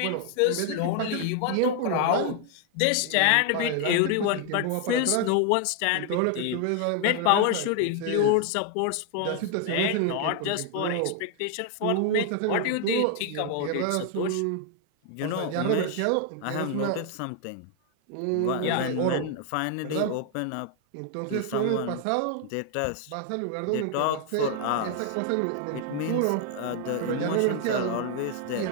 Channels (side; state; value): both; different; correlation 0.00